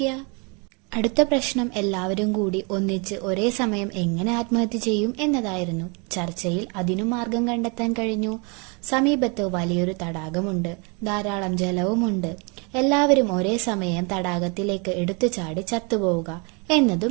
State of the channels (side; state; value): left; quieter; 32.5 dB